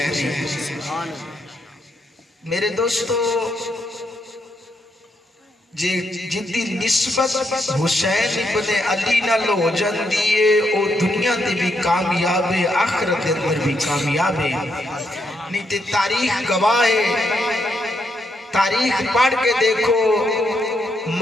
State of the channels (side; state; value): both; normal; correlation 0.78